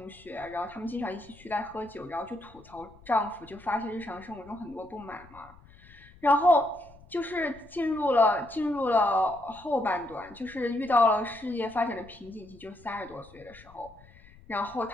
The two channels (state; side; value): noise; left; rumble, 23 dB below the sound